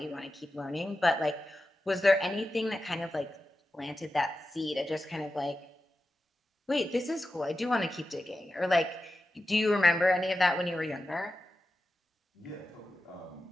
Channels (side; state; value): both; normal; correlation 0.92